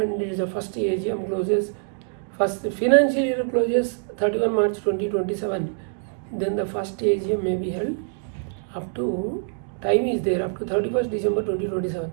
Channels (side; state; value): left; silent; digital silence